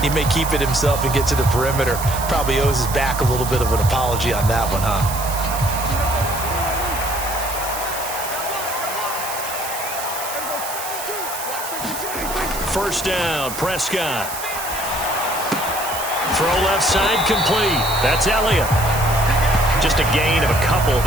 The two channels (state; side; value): noise; right; hiss, 8 dB below the sound